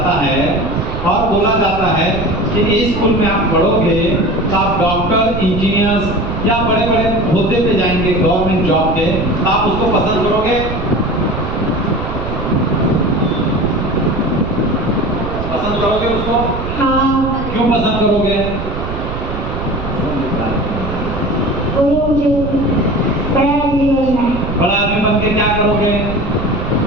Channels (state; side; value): noise; right; rumble, 6 dB below the sound